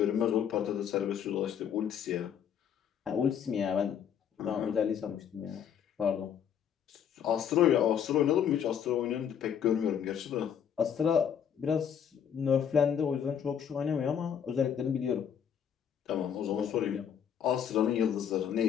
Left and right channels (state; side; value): quieter; right; 8.4 dB